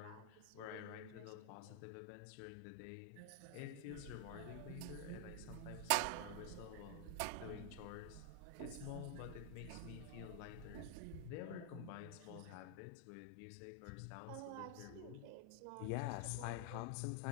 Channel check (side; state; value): both; different; correlation 0.00